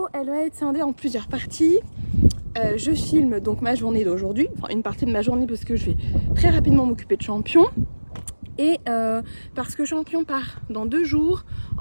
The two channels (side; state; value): both; inverted; correlation -1.00